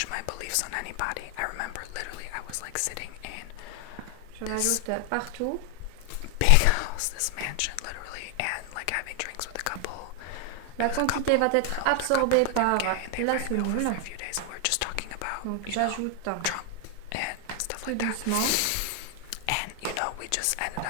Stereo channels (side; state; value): both; different; correlation 0.00